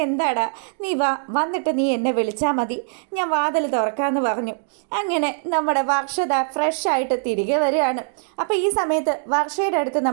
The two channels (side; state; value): left; silent; digital silence